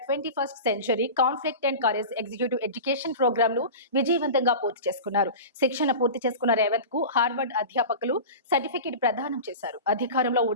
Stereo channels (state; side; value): inverted; both; correlation -0.32